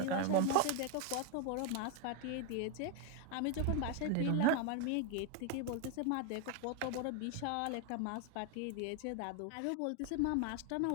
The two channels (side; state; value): both; different; correlation 0.01